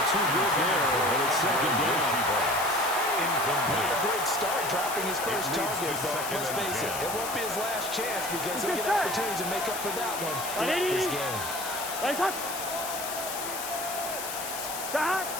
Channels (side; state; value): left; noise; hiss, 7 dB below the sound